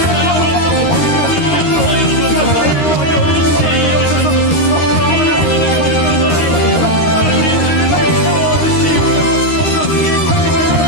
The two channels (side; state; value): right; late; 13 ms